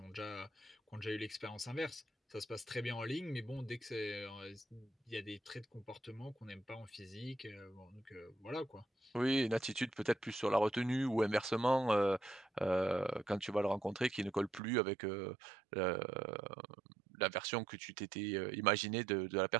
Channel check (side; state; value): left; drops out; at 14.6 s